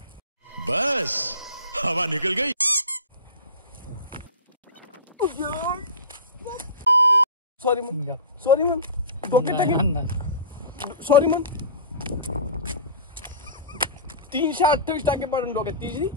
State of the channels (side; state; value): both; inverted; correlation -0.34